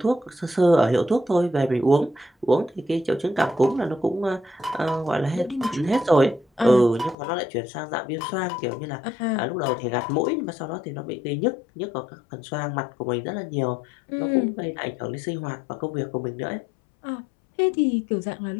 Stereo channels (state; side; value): drops out; right; at 7.2 s